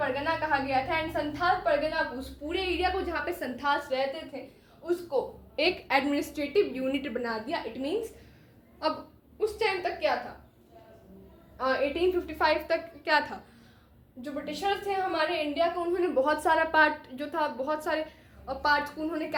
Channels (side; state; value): both; identical; correlation 1.00